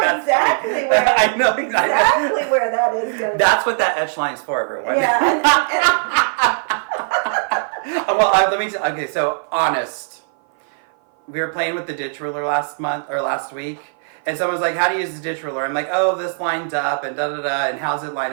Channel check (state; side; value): silent; left; 56 dB below the other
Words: exactly where. I know exactly where that is going to be. That's what that etch line is for, everyone. Yeah. Well, let me. Okay, so honest. We were playing with the ditch ruler last week, and someone was like, "How do you use the ditch ruler?" I'm like, "Oh, this lines up and da da da, and how's it